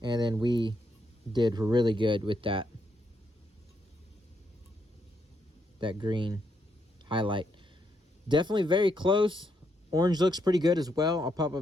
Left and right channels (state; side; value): normal; both; correlation 0.78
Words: And then we did really good with that green highlight. Definitely very close. Orange looks pretty good as well. I'll pop